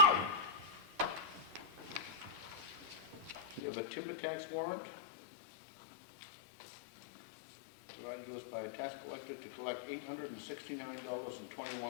We have a timber tax warrant provided to us by a tax collector to collect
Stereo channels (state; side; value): drops out; right; at 3.6 s